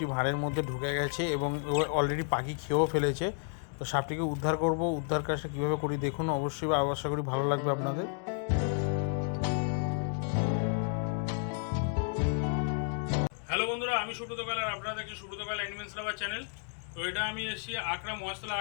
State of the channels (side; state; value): right; silent; 57 dB below the other